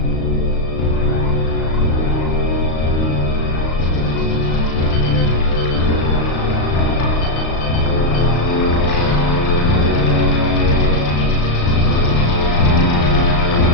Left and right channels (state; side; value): late; right; 35 ms